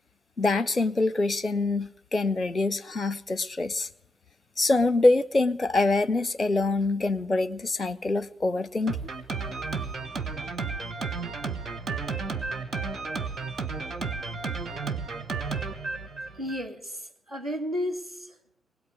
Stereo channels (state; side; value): normal; both; correlation 0.81